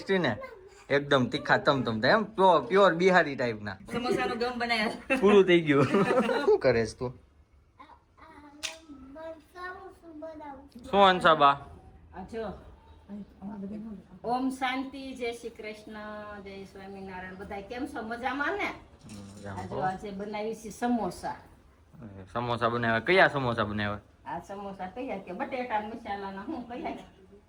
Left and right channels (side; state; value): both; identical; correlation 1.00